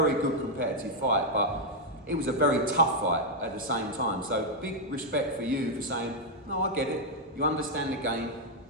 good competitive fight, but it was a very tough fight at the same time. So big respect for you for saying, no, I get it. You understand the game.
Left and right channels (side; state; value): both; normal; correlation -0.02